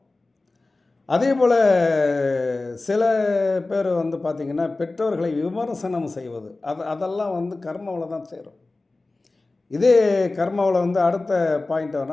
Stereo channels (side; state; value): right; quieter; 3.2 dB